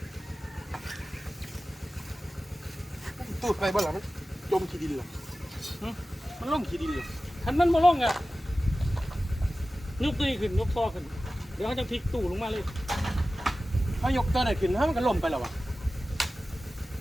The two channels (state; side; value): normal; both; correlation 0.95